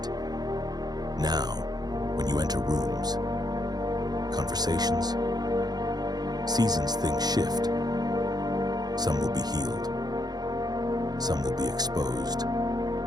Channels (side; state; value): left; late; 0.19 ms